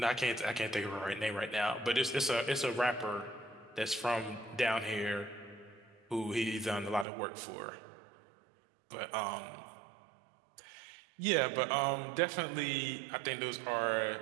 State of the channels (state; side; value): drops out; left; at 7.1 s